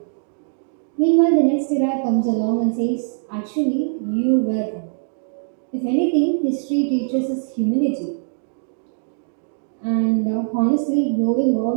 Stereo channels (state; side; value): silent; left; digital silence